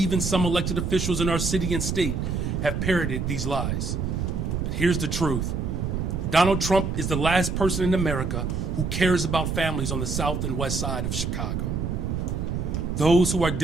some elected officials in our city and state have parroted these lies. But here's the truth. Donald Trump is the last person in America who cares about families on the south and west side of Chicago, those who are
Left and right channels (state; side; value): noise; right; rumble, 1 dB below the sound